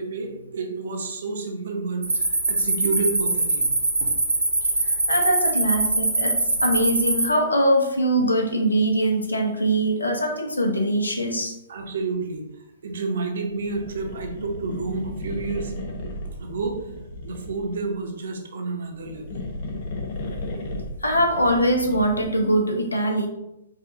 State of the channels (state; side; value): inverted; both; correlation -0.66